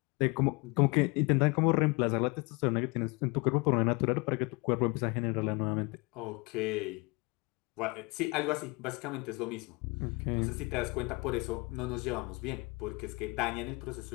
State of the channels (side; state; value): right; quieter; 28.2 dB